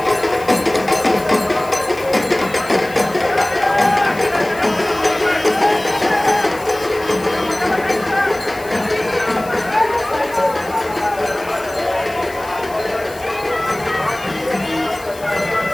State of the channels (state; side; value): noise; left; hiss, 19 dB below the sound